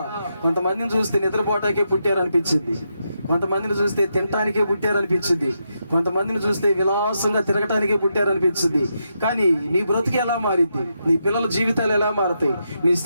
కొంతమందిని చూస్తే నిద్రపోటాకే పుట్టారనిపించింది, కొంతమందిని చూస్తే తినటానికే పుట్టారనిపించింది, కొంతమందిని చూస్తే విలాసంగా తిరగటానికే పుట్టారనిపించింది. కానీ నీ బ్రతుకు ఎలా మారింది, నీ పిల్లల జీవితాలు ఎలా మారతాయి, నీ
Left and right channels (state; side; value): inverted; both; correlation -0.83